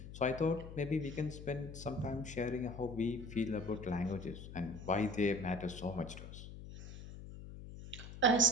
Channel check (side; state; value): left; noise; hum, 12 dB below the sound